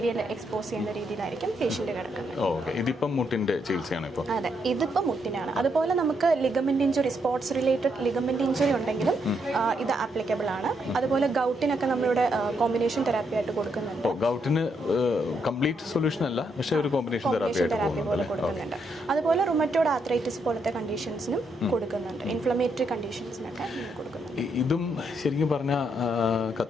എക്സ്പോസ് ചെയ്യുന്ന രീതിയിലായിരിക്കും പേഷ്യന്റ് കിടക്കുന്നത്. ഇതിപ്പം മുട്ടിന്റെ ചികിത്സയാണ് ഇപ്പോൾ. അതെ, ഇതിപ്പോ മുട്ടിനാണ്. അതുപോലെ നമുക്ക് ligament injury, sports related ligament injury ഉണ്ടെങ്കിലും ഇത് ആപ്ലിക്കബിൾ ആണ്. അതുപോലെ ഗൗട്ടിനൊക്കെ നമ്മളിവിടെ കോമ്പിനേഷൻ തെറാപ്പി ആയിട്ട് കൊടുക്കുന്നുണ്ട്. ഗൗട്ടിന് കംപ്ലീറ്റ് സൊല്യൂഷൻ അല്ല, പക്ഷേ ഒരു കോമ്പിനേഷൻ തെറാപ്പി പോലെ കൊടുക്കുന്നുണ്ട്. അതുപോലെ റുമറ്റോയ്ഡ് ആർത്രൈറ്റിസ് പോലത്തെ കണ്ടീഷൻസിനും കൊടുക്കുന്നുണ്ട്. ഇൻഫ്ലമേറ്ററി കണ്ടീഷൻസിനൊക്കെ കൊടുക്കുന്നുണ്ട്. ഇതും ശരിക്കും പറഞ്ഞ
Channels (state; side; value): normal; both; correlation 0.77